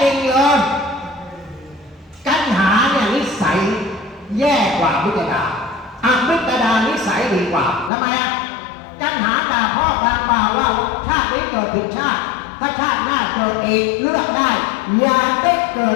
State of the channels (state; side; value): drops out; right; at 7.9 s